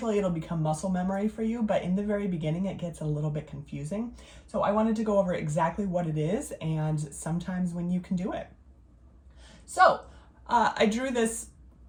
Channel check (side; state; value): both; identical; correlation 1.00